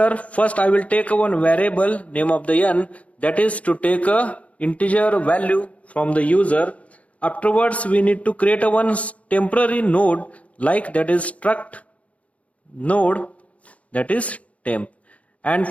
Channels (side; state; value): right; late; 0.066 ms